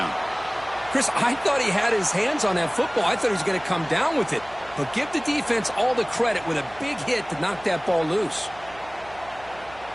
Chris, I thought he had his hands on that football. I thought he was going to come down with it. But give the defense all the credit with a big hit to knock that ball loose.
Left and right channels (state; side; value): noise; right; hum, 22 dB below the sound